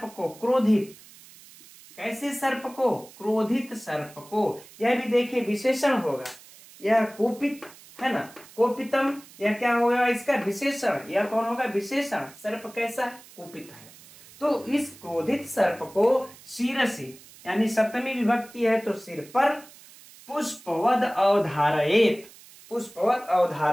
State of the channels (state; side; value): noise; right; hiss, 22 dB below the sound